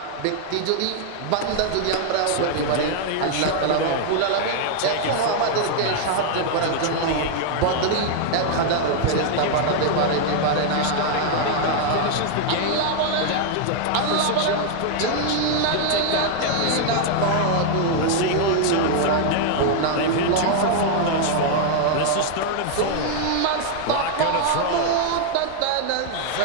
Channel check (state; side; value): different; both; correlation 0.00